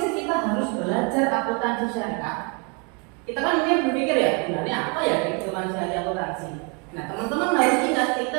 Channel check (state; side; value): quieter; left; 34.1 dB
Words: kita harus belajar akuntansi syariah? Kita kan mungkin berpikir ya, sebenarnya apa ya kehidupan syariah akuntansi? Nah, teman-teman harus ingat,